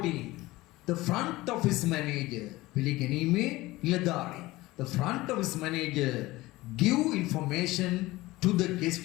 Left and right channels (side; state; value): right; quieter; 19.2 dB